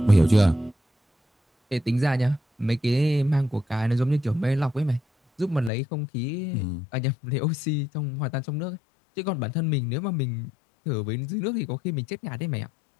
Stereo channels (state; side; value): drops out; right; at 5.7 s